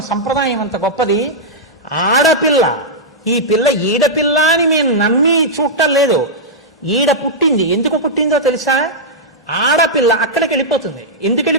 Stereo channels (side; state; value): both; normal; correlation -0.09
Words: సంప్రదాయం అంత గొప్పది. ఆడపిల్ల, ఈ పిల్ల ఈడపిల్ల అని మేము నమ్మి చూడటం లేదు. ఈడ పుట్టింది, ఎందుకు పుట్టిందో తెలుసా? ఆడపిల్ల అక్కడికి వెళ్ళిపోతుంది. ఎందుకు